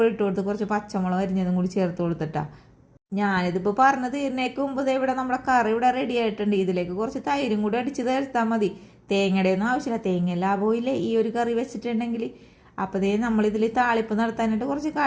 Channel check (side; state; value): both; identical; correlation 1.00